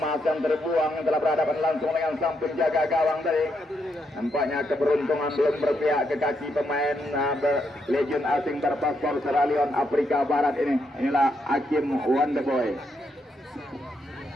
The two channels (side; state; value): both; normal; correlation 0.79